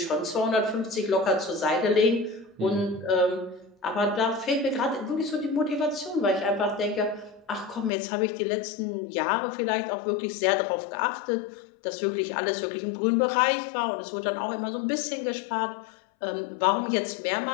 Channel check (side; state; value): right; drops out; at 7.9 s